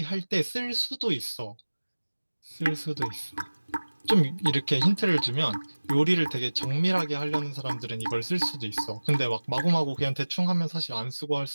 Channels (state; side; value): inverted; both; correlation -1.00